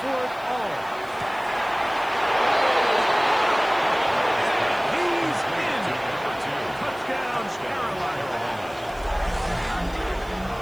for it all. He's in. Touchdown, Carolina.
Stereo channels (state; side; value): noise; right; hiss, 24 dB below the sound